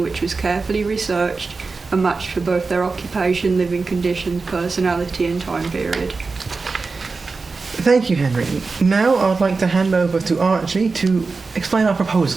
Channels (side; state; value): left; quieter; 4.2 dB